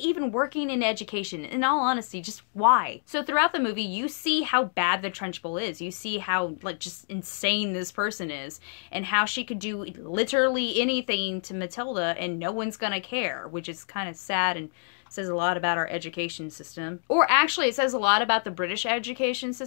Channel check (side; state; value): right; silent; digital silence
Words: even working in education? In all honesty, just why? So throughout the movie, you see how bad the Trunchbull is. You see how, like, just insane this person is. And how she could do literally anything to Matilda and no one's gonna care. Which is kind of sad and says a lot about our education system. Or actually, it says a lot about the British education